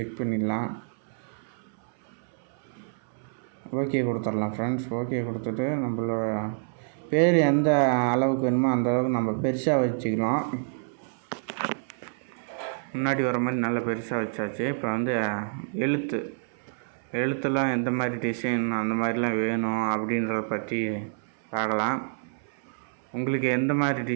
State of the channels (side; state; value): left; silent; 60 dB below the other